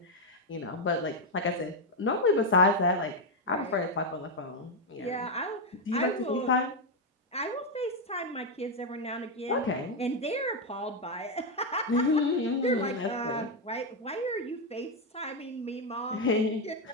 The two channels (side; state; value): both; normal; correlation 0.03